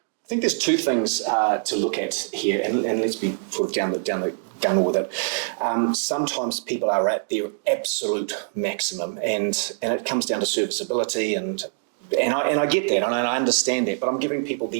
think there's two things to look at here, and let's be sort of down the gun with it. Sometimes people are at their absolute maximum, and it comes down to serviceability, and I get that, and I understand that, but I'm giving people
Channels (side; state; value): left; silent; digital silence